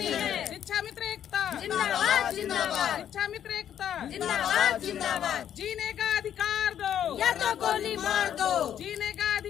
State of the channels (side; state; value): right; quieter; 9.9 dB